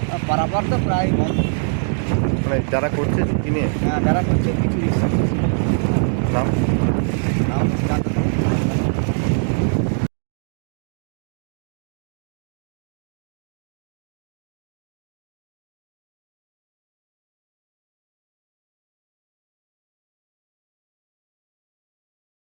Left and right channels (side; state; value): left; silent; 59 dB below the other